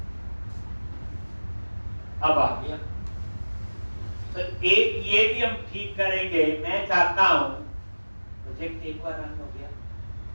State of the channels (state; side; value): inverted; both; correlation -1.00